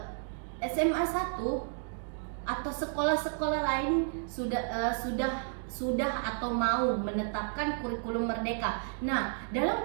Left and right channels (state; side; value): silent; left; digital silence